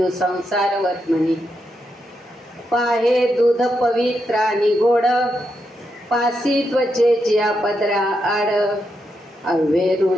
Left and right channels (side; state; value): both; normal; correlation 0.83